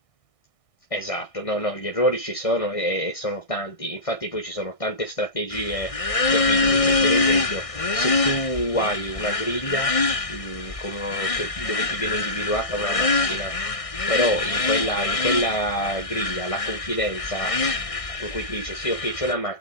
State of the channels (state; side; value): late; right; 1.6 ms